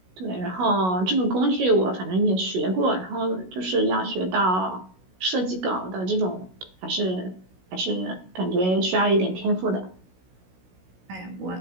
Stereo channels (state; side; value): late; left; 16 ms